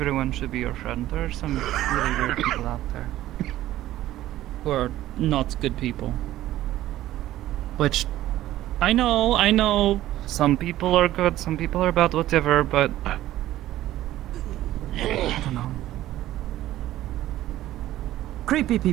should be your friend. There are some really weird people out there. Who are not good people. Which, I know, some people are good, some people are bad, whatever, but... I don't know. Creepy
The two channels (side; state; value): left; quieter; 14.4 dB